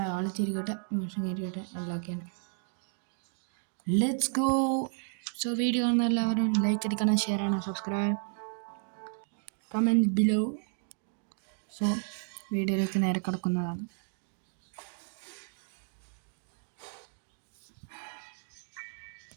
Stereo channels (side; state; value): left; silent; 56 dB below the other